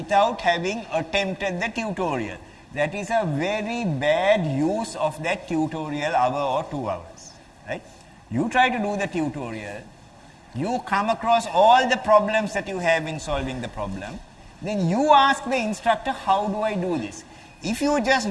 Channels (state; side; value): identical; both; correlation 1.00